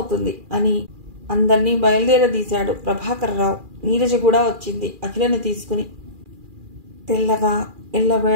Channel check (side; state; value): left; late; 2.4 ms